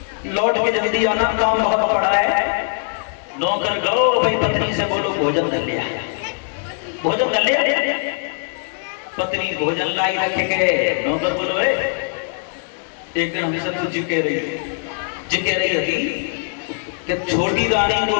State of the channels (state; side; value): silent; right; 58 dB below the other